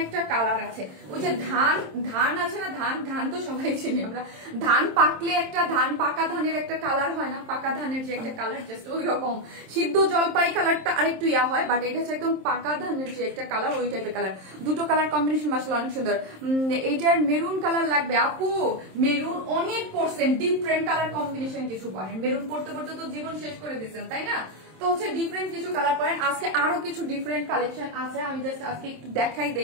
একটা কালার আছে। ওই যে ধান আছে না, ধান তো সবাই চিনি আমরা, ধান পাকলে একটা পাকা ধানের একটা কালার হয় না, পাকা ধানের যে একটা কালার জাস্ট ওই রকম সিদ্ধ জলপাই কালারটা আরেকটু ইয়া হয়, বাট এটা হচ্ছে একদম পাকা ধানের যে একটা কালার, ওই টাইপের কালার। দুটো কালার কম্বিনেশন মাশাআল্লাহ অনেক সুন্দর। এইটার মেরুন কালার লাগবে আপু, মেরুন অনেক পড়ছেন, ডিফারেন্ট কালার কম্বিনেশন কিছু পড়েন, মেরুন পড়তে পড়তে তো জীবন শেষ করে দিচ্ছেন, তাই না? তো হচ্ছে ডিফারেন্ট কিছু কালার পড়েন। আজকে আরো কিছু ডিফারেন্ট কালেকশন আছে, আমি জাস্ট আজকে একটু দেখাই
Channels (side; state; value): left; late; 27 ms